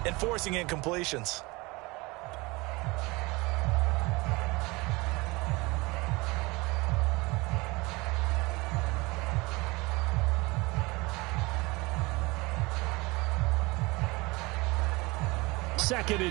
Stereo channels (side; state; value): left; quieter; 23.9 dB